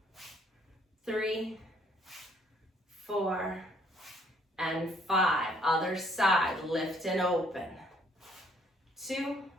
3, 4, and 5. Other side, lift and open. 2,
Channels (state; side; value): normal; both; correlation 0.65